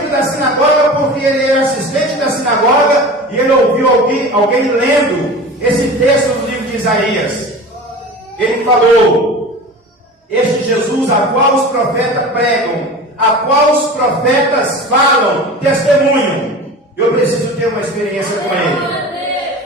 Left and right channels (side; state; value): both; normal; correlation 0.35